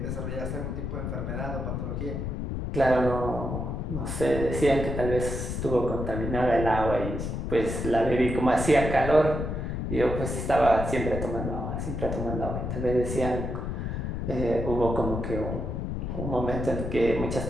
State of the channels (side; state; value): left; noise; rumble, 3 dB below the sound